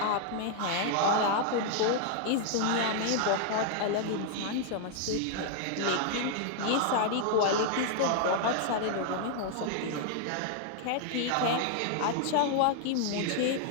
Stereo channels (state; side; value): different; both; correlation 0.00